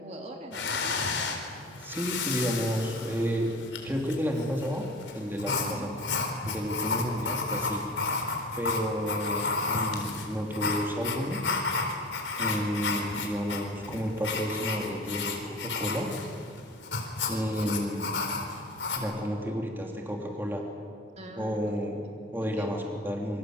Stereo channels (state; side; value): normal; both; correlation 0.39